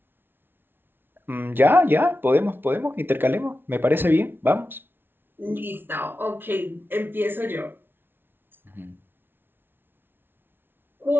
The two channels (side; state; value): left; late; 0.10 ms